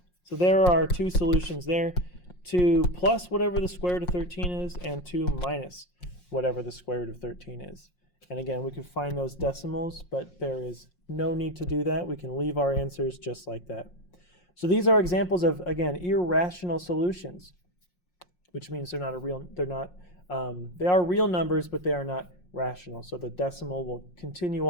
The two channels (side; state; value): right; late; 5.6 ms